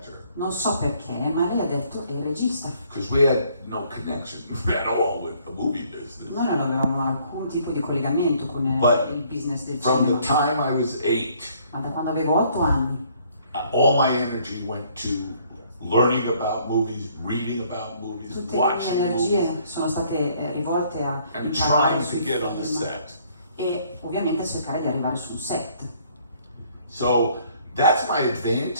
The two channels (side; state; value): both; inverted; correlation -0.63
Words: Non so perché, ma lei ha detto è il regista. Because we had no connection at all with the movie business. Noi non avevamo alcun tipo di collegamento con But il business del From the cinema. time I was 8, Ma da quando avevo 8 anni, all my energy went to learning about movies, reading about movies, tutte le mie watching energie movies, sono state rivolte a and imparare trying to sui get on the film set. e ovviamente a cercare di arrivare su un set. So that's my